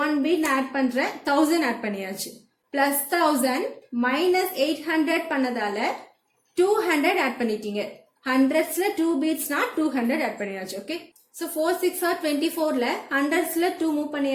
பீட் ஆட் பண்றேன், 1000 ஆட் பண்ணியாச்சு. பிளஸ் 1000 மைனஸ் 800 பண்ணதால 200 ஆட் பண்ணிட்டீங்க. ஹண்ட்ரட்ஸ்ல 2 பீட்ஸ்னா 200 ஆட் பண்ணியாச்சு. ஓகே, சோ 4 6 are 24ல ஹண்ட்ரட்ஸ்ல 2 மூவ்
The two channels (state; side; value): identical; both; correlation 1.00